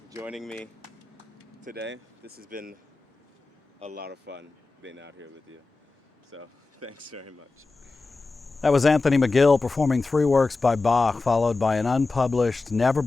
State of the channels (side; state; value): right; quieter; 3.7 dB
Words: joining me today. This has been a lot of fun being out here with you. So thanks very much. That was Anthony McGill performing 3 works by Bach, followed by an unpublished,